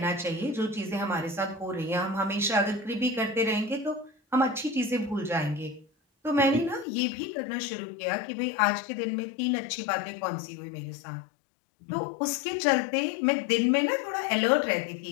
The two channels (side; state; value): right; drops out; at 6.9 s